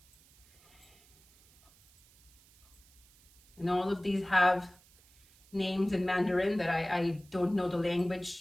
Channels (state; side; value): noise; right; hiss, 28 dB below the sound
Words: And all of these have names in Mandarin that I don't know the language